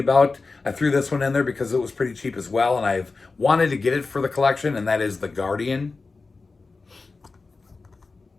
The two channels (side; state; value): right; quieter; 4.0 dB